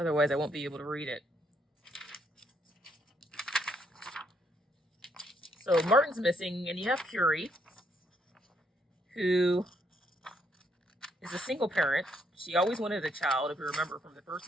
I won't be able to read it. So Martin's missing, and you have Curie, who is a single parent. She always wanted a child, if you remember from the first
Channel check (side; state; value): both; normal; correlation 0.73